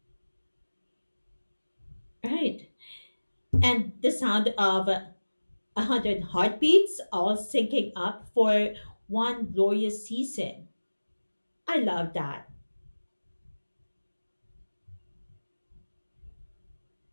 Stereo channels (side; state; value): both; inverted; correlation -1.00